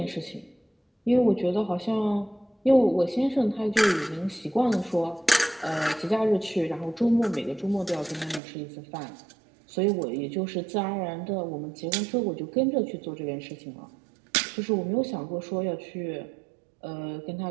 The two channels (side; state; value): left; drops out; at 8.4 s